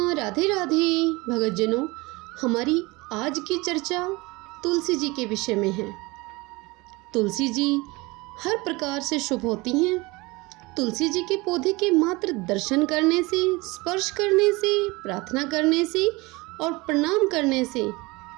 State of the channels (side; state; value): left; quieter; 23.7 dB